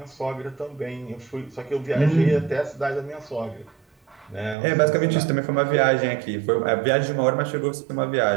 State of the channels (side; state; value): left; drops out; at 4.5 s